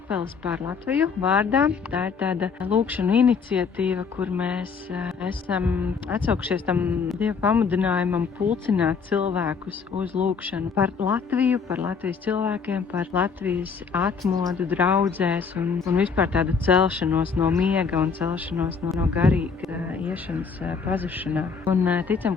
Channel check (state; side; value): quieter; right; 5.5 dB